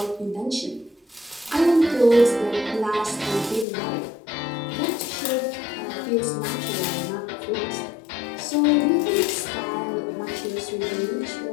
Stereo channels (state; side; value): drops out; right; at 3.7 s